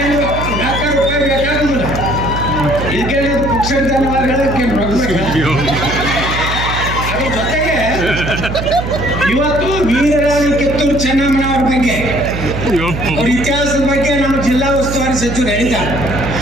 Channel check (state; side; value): noise; right; hum, 5 dB below the sound